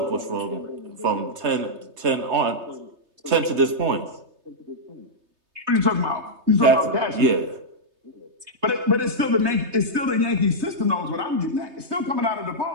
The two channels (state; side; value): late; left; 3.3 ms